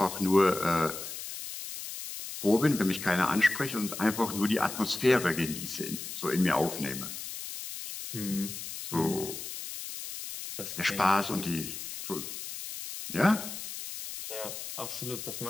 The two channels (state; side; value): noise; left; hiss, 8 dB below the sound